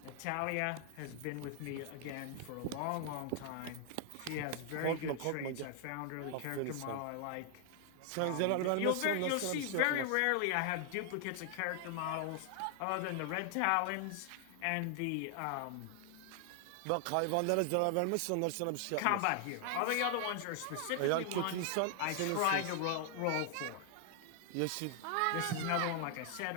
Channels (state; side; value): different; both; correlation 0.00